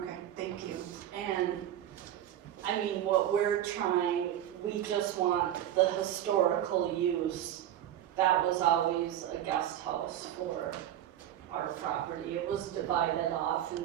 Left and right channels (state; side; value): quieter; left; 11.5 dB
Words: thank you. And, I mean, what we're trying, we just want the historical use. That was always a guest house for our property. It was divided off in